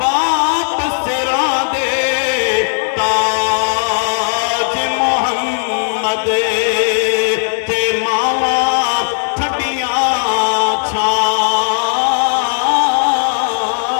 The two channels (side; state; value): right; silent; digital silence